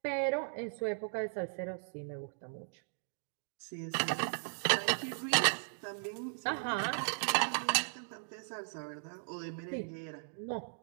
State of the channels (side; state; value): left; silent; digital silence